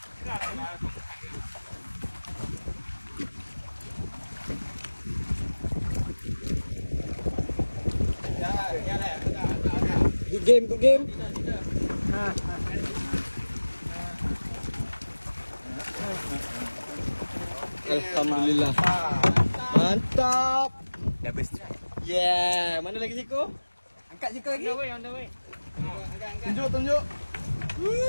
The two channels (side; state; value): both; inverted; correlation -1.00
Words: Good game. Alhamdulillah. Mantap. Double strike. Yeah, mana lagi Siko? Angkat sikit lagi. On the way. Tunjuk.